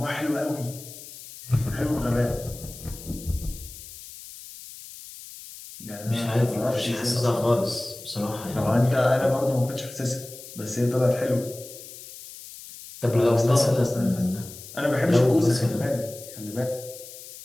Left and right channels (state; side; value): noise; left; hiss, 15 dB below the sound